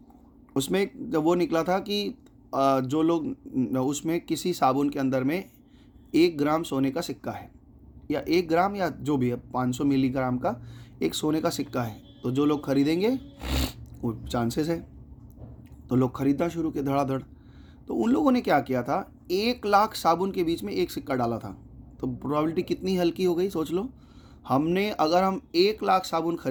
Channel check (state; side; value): identical; both; correlation 1.00